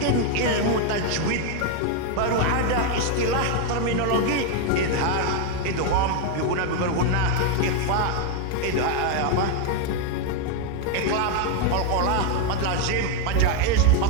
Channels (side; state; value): both; different; correlation 0.01